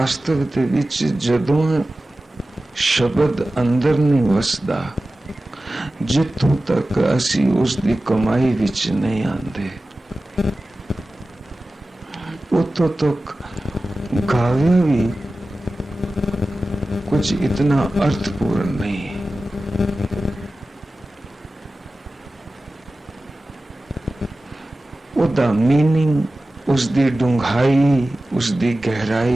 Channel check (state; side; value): normal; both; correlation 0.95